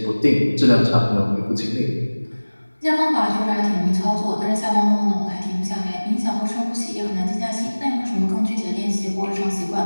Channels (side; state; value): both; inverted; correlation -1.00